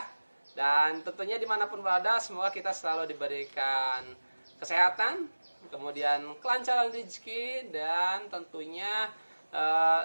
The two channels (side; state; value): both; inverted; correlation -1.00